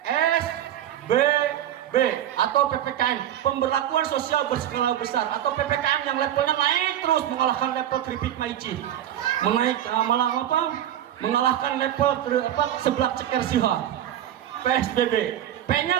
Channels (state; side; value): quieter; left; 11.4 dB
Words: PSBB atau PPKM, pemberlakuan sosial berskala besar, atau PPKM yang levelnya naik terus mengalahkan level keripik maici, mengalahkan level seblak ceker siha. PSBB.